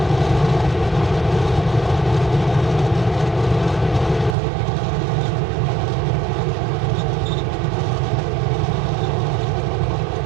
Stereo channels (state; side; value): drops out; left; at 4.3 s